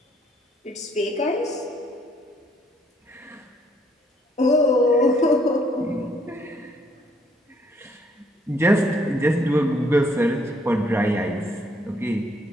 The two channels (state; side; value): normal; both; correlation 0.67